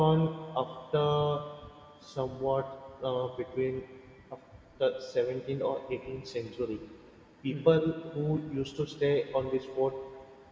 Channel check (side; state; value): both; identical; correlation 1.00